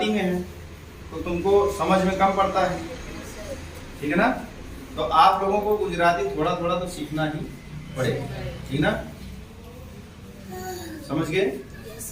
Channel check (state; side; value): identical; both; correlation 1.00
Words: में है तो तुमको समझ में कम पड़ता है, ठीक है ना। तो आप लोगों को गुजराती थोड़ा थोड़ा तो सीखना ही पड़ेगा, ठीक ना, समझ गए।